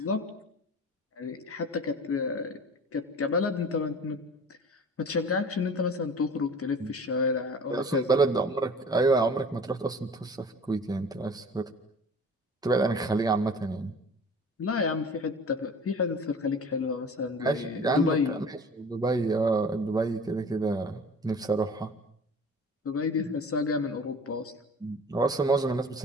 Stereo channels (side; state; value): both; normal; correlation 0.42